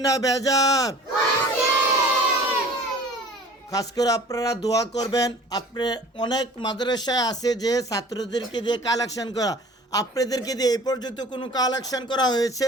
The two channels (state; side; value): normal; both; correlation 0.46